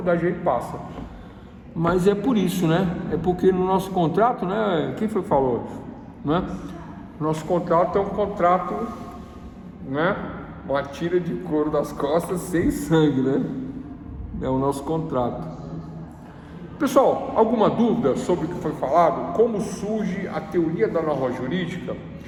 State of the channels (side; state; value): both; identical; correlation 1.00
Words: ele passa. Mas é por isso, né? É porque no nosso contrato, né? Quem foi que falou isso? Né? Nosso contrato é um contrato, né? Uma tira de couro das costas sem sangue, né? É o nosso contrato. Pessoal, alguma dúvida sobre o que foi falado? Como surge a teoria da norma jurídica?